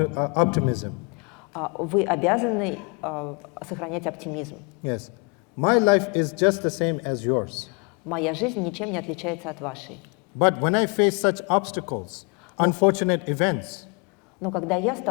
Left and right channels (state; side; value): quieter; right; 33.6 dB